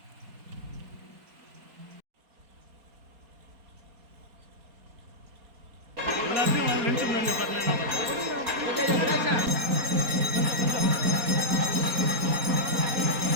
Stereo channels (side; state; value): left; late; 4.2 ms